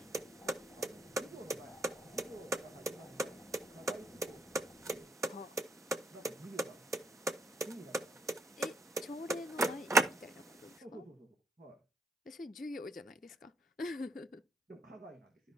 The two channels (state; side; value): normal; both; correlation 0.71